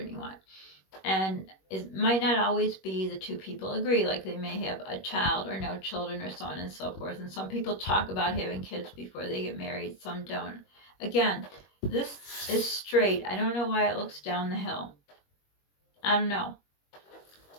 you want. And it might not always be the two people agree. Like they may have a child or no children or so on and so forth. And some people talk about having kids before they get married. Some don't. Again, this is straight. I don't know why it looks down the hill. I don't know.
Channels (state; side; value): late; right; 21 ms